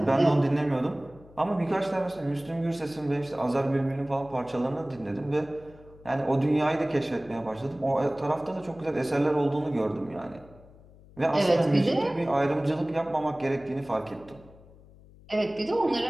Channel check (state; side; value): noise; left; hum, 23 dB below the sound